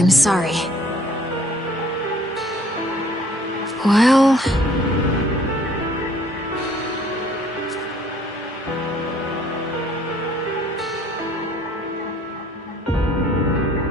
I'm sorry. Well...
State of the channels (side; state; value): both; normal; correlation 0.58